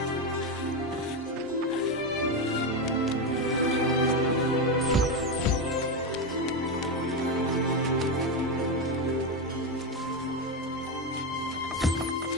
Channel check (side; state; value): both; normal; correlation 0.11